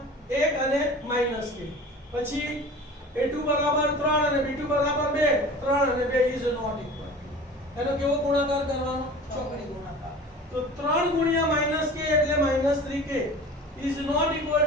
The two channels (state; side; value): normal; both; correlation 0.39